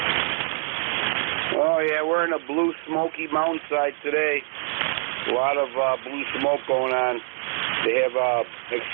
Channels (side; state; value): left; silent; 62 dB below the other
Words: Oh, yeah, we're in a blue smoky mountainside today. A lot of blue smoke going on. They have